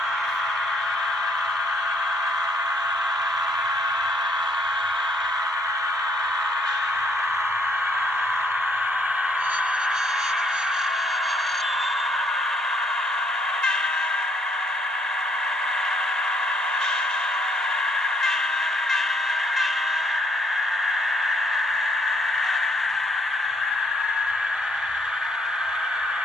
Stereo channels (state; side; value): normal; both; correlation 0.68